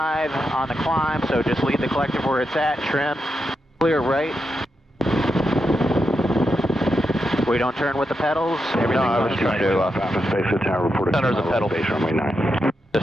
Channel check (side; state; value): both; normal; correlation 0.85